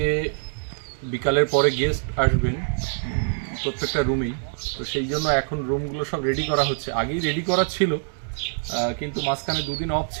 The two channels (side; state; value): left; silent; 62 dB below the other